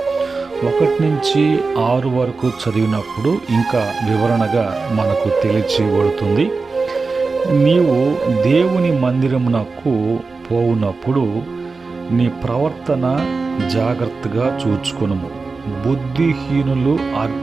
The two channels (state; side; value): quieter; left; 4.1 dB